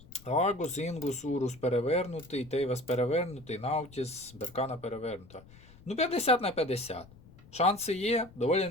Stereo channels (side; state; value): left; noise; rumble, 22 dB below the sound